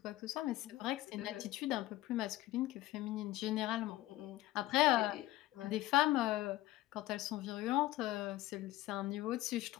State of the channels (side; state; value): right; quieter; 16.4 dB